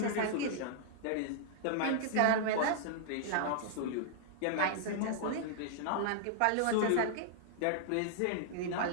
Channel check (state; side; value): different; both; correlation -0.01